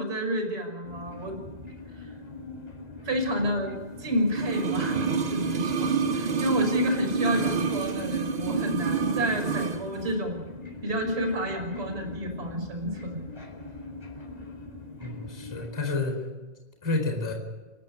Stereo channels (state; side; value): late; left; 2.0 ms